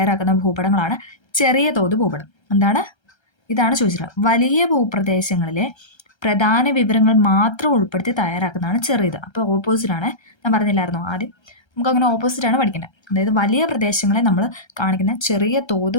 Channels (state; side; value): late; right; 1.3 ms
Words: ഭൂപടങ്ങളാണ് ചെറിയ തോത് ഭൂപടം. ഇതാണ് ചോദിച്ചത്. വലിയ ഭൂപ്രദേശങ്ങളിലെ പ്രധാന വിവരങ്ങൾ മാത്രം ഉൾപ്പെടുത്തി തയ്യാറാക്കുന്നതാണ് ചെറിയത്. അപ്പോൾ ഓപ്പോസിറ്റാണ്. ഞാൻ പറഞ്ഞില്ലായിരുന്നോ ആദ്യം, നമുക്കങ്ങനെ ഓപ്പോസിറ്റാണ് പഠിക്കുന്നത്. അതായത് വലിയ പ്രദേശങ്ങളെ നമ്മൾ കാണിക്കുന്ന ചെറിയ തോത്